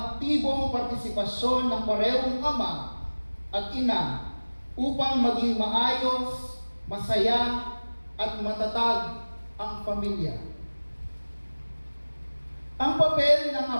partisipasyon ng parehong ama at ina upang maging maayos, masaya at matatag ang pamilya. Ang papel ng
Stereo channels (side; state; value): both; inverted; correlation -1.00